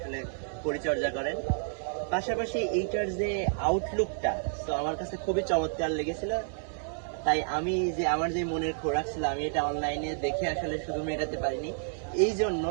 পরিচর্যা করেন। পাশাপাশি এইটার যে আউটলুকটা তো আমার কাছে খুবই চমৎকার লেগেছিল। তাই আমি যে আমার যে মনের খোরাক ছিল আমি এটা অনলাইনে দেখে আসলে শুধু মেটাতে পারিনি। এই জন্য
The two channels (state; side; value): silent; left; digital silence